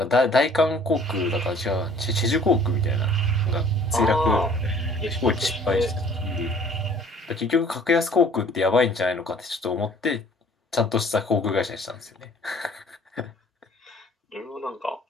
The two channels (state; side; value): normal; both; correlation 0.54